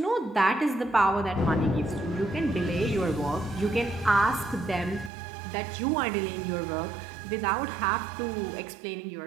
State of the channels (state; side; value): drops out; left; at 5.1 s